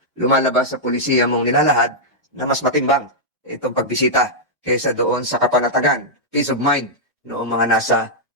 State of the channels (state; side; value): normal; both; correlation -0.07